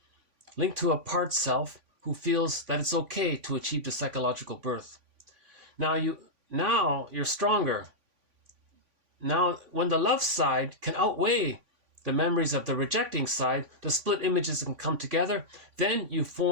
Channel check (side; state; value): left; late; 3.5 ms